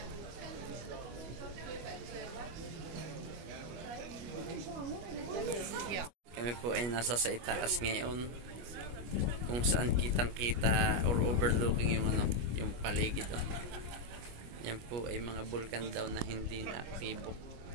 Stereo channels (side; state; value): left; late; 25 ms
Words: Kami po ay nasa sa itaas ngayon kung saan kitang-kita or overlooking yung ano, yung paligid. Yan po ay mga bulkan daw na hindi na aktibo.